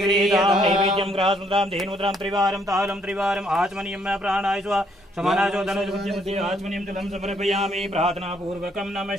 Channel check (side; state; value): both; normal; correlation 0.69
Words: नैवेद्यं ग्रासमुद्रां धेनुद्रां त्रिवारं तालं त्रिवारम् आचमनीयं प्राणाय स्वा समानाचो धनुर्मध्ये आचमनीयं जलं समर्पयामि प्रार्थनापूर्वकं